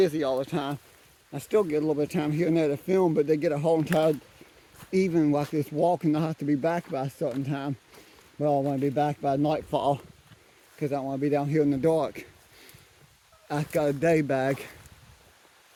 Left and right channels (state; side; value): identical; both; correlation 1.00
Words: all the time. I still get a little bit of time here and there to film, but they get a whole entire evening like this walking. I have to be back by a certain time. Well, I want to be back by nightfall because I don't want to be down here in the dark. I've got a day bag.